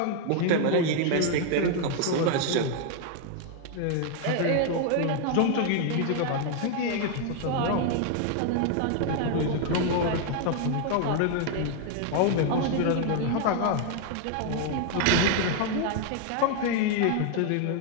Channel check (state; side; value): different; both; correlation 0.00